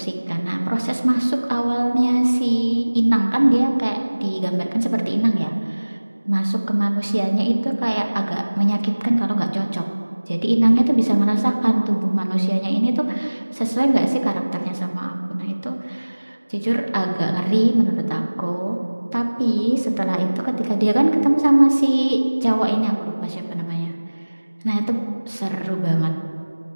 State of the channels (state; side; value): inverted; both; correlation -1.00